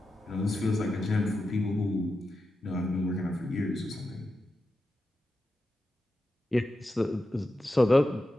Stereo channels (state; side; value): normal; both; correlation 0.89